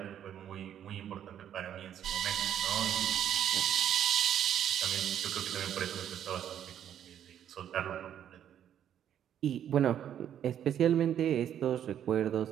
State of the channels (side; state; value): left; quieter; 10.0 dB